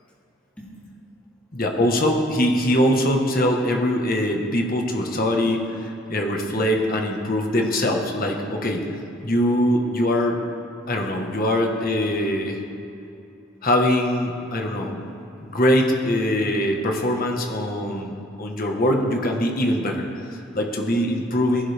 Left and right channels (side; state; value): both; normal; correlation 0.57